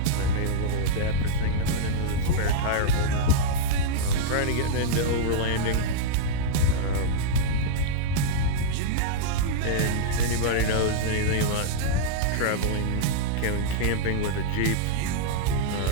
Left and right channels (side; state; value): both; different; correlation -0.02